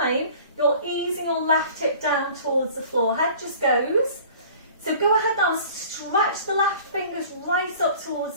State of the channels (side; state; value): both; inverted; correlation -0.46